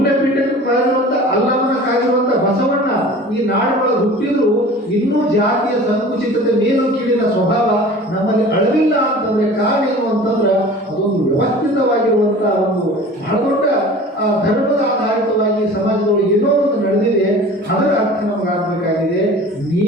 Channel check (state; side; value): normal; both; correlation 0.41